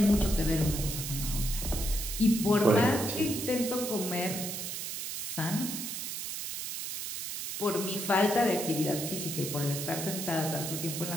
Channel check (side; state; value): right; noise; hiss, 5 dB below the sound